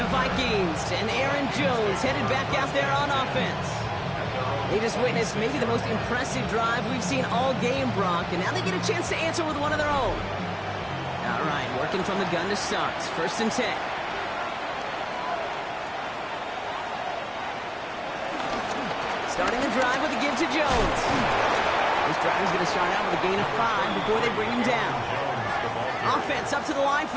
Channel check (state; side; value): identical; both; correlation 1.00